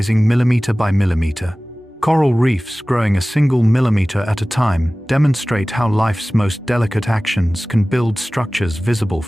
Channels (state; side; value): normal; both; correlation 0.98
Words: millimeter by millimeter. Coral reefs growing a single millimeter at a time demonstrate how life's most delicate actions can build structures visible